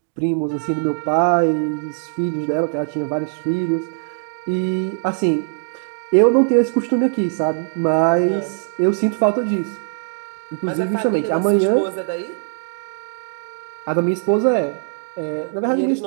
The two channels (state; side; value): silent; left; digital silence